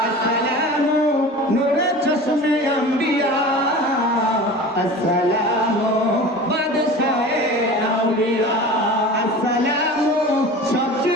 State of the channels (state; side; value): normal; both; correlation 0.36